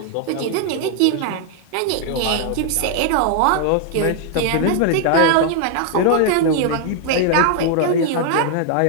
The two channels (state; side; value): different; both; correlation 0.00